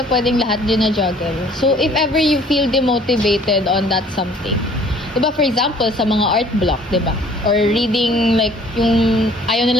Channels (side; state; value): both; normal; correlation 0.54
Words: pwedeng lahat din na juggle. So, if ever you feel demotivated on that something, diba, for example, sa mga art block, diba? Or reading, like, yung ayaw